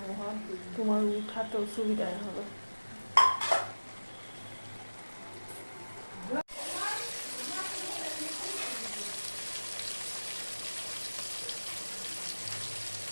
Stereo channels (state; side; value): inverted; both; correlation -1.00